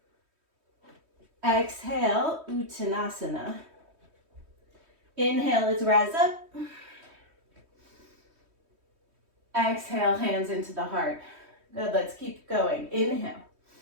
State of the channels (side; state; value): left; late; 3.2 ms